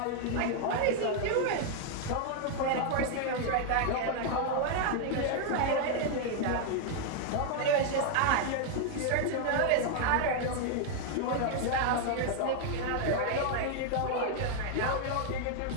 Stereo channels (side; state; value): both; different; correlation 0.00